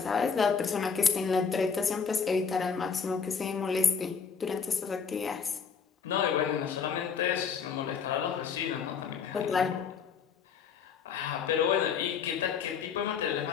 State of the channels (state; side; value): quieter; right; 6.2 dB